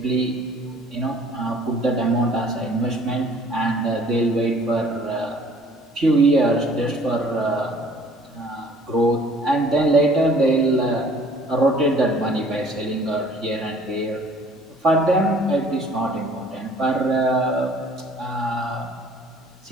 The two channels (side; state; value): both; normal; correlation 0.54